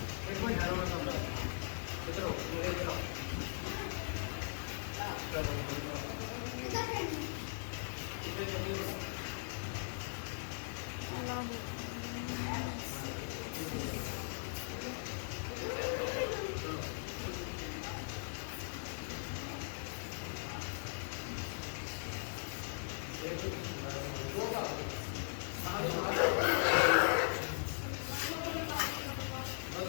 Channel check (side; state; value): right; silent; 51 dB below the other